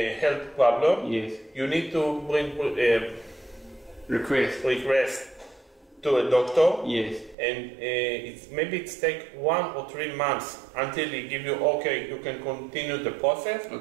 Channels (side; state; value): left; drops out; at 7.4 s